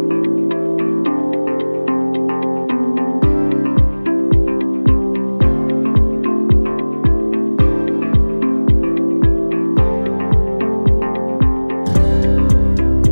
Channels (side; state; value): both; inverted; correlation -1.00